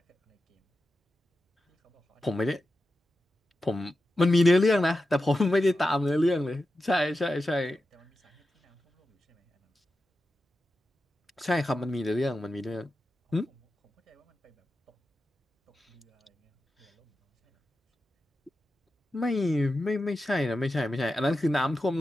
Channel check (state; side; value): normal; both; correlation 0.91